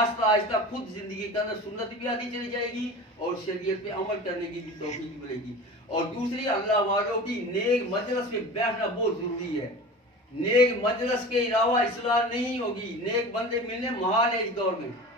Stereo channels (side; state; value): both; normal; correlation 0.35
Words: आहिस्ता खुद जिंदगी के अंदर सुन्नत भी आती चली जाएगी और शरीयत पे अमल करने की भी तौफीक मिलेगी। और दूसरी, अल्लाह वालों की नेक मजलिस में बैठना बहुत जरूरी है। नेक मजलिस के अलावा इस्लाह नहीं होगी। नेक बंदे मिलने महाल है, इस दौर में